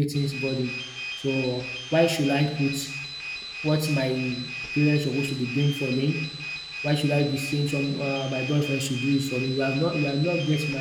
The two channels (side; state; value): both; identical; correlation 1.00